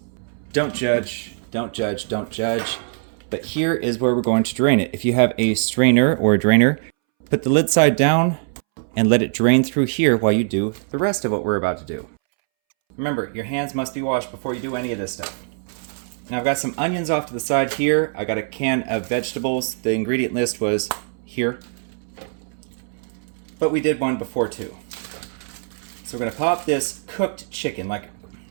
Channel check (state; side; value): silent; left; 64 dB below the other